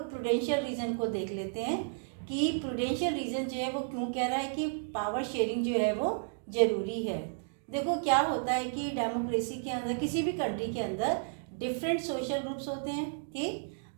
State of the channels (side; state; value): left; silent; digital silence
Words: प्रूडेंशियल रीज़न को देख लेते हैं कि प्रूडेंशियल रीज़न जो है वो क्यों कह रहा है कि पावर शेयरिंग जो है वो ज़रूरी है। देखो क्या होता है कि डेमोक्रेसी के अंदर, किसी भी कंट्री के अंदर डिफरेंट सोशल ग्रुप्स होते हैं। ठीक,